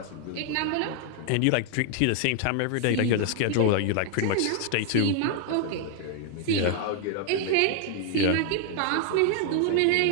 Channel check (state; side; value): different; both; correlation 0.00